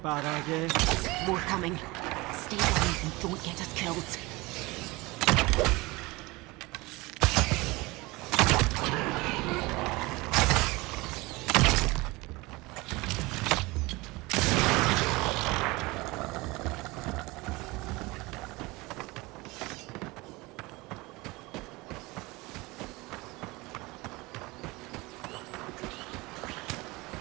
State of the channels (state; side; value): quieter; left; 22.8 dB